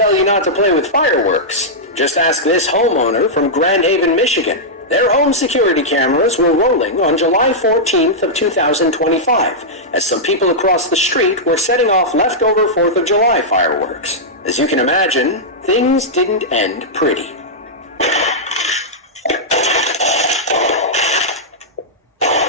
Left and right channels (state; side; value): normal; both; correlation -0.09